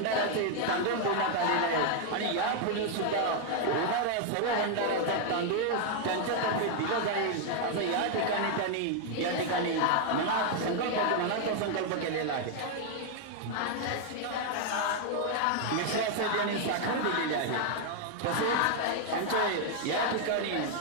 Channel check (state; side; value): different; both; correlation 0.00